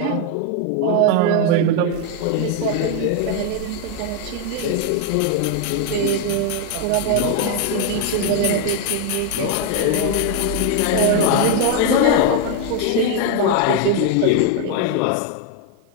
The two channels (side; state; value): both; different; correlation 0.01